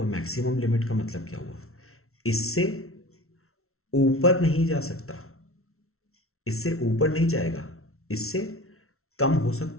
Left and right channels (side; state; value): right; late; 0.63 ms